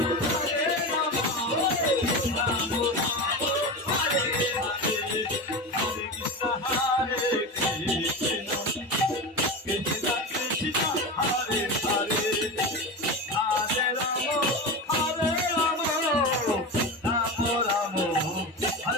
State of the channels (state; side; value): normal; both; correlation 0.23